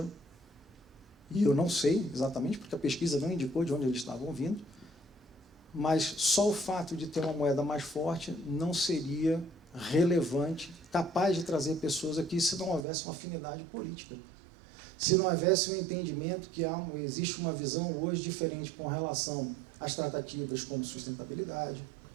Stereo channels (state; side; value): drops out; left; at 12.9 s